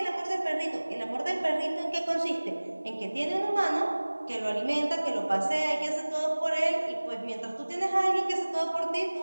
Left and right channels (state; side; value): inverted; both; correlation -1.00